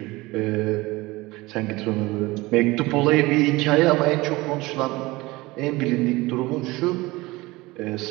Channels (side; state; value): left; quieter; 21.0 dB